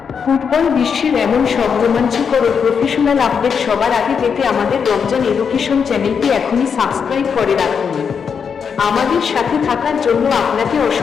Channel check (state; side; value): quieter; right; 6.5 dB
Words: ফুটবল বিশ্বের এমন সব রোমাঞ্চকর ও প্রফেশনাল আপডেট সবার আগে পেতে আমাদের রমজান এডুকেশন চ্যানেলটি এখনই সাবস্ক্রাইব করে রাখুন। আমাদের সাথে থাকার জন্য আপনাকে